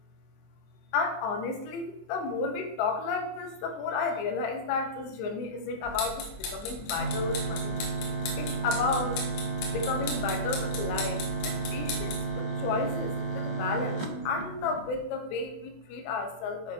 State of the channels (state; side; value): late; right; 23 ms